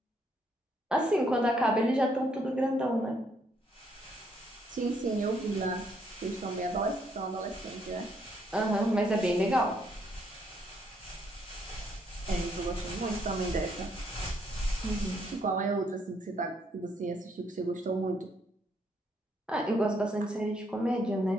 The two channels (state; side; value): normal; both; correlation 0.71